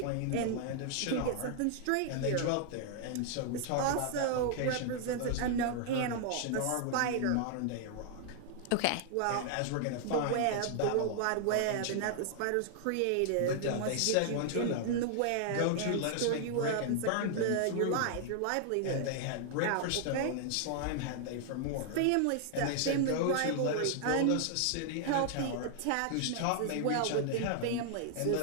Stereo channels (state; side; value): different; both; correlation -0.01